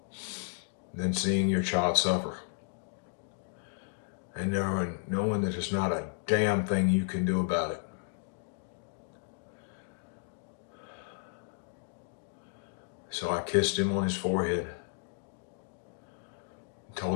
than seeing your child suffer and knowing that there's not a damn thing you can do about it. So I kissed him on his forehead,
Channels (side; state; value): right; silent; digital silence